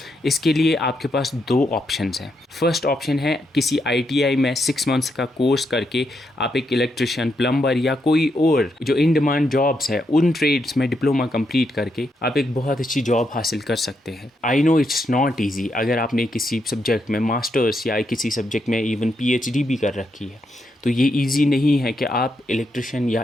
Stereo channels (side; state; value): both; normal; correlation 0.81